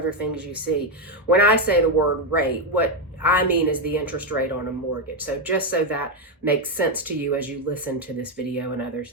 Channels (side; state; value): both; normal; correlation 0.05